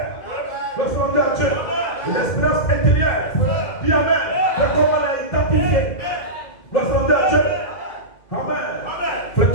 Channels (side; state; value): right; late; 2.0 ms